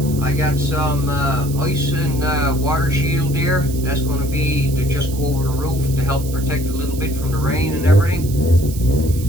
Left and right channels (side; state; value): right; noise; hiss, 15 dB below the sound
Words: I got some ice and water shield here. That's going to be to just go over the roof to help protect a little bit from the rain and everything.